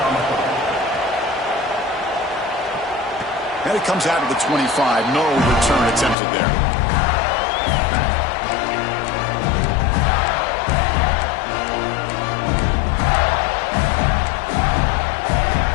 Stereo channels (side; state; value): right; drops out; at 6.2 s